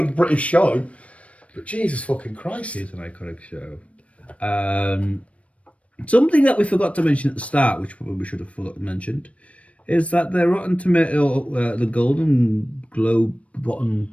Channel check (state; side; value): late; right; 0.064 ms